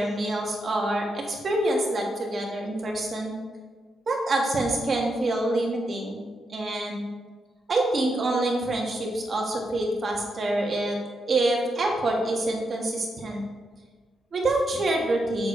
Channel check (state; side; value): normal; both; correlation 0.83